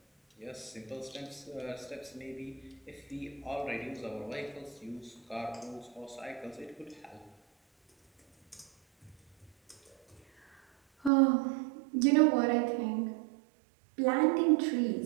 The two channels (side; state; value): left; drops out; at 11.1 s